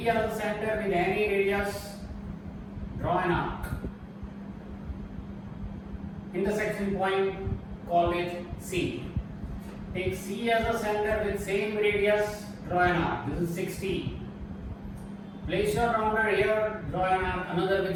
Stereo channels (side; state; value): both; identical; correlation 1.00